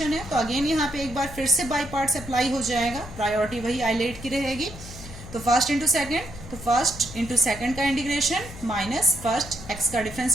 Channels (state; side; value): noise; left; hum, 14 dB below the sound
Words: है, तो अगेन यहाँ पे एक बार फिर से बाई पार्ट्स अप्लाई हो जाएगा, प्रायोरिटी वही आइलेट की रहेगी। तो फर्स्ट इंटू सेकेंड, तो फर्स्ट इंटू सेकेंड का इंटीग्रेशन माइनस फर्स्ट x का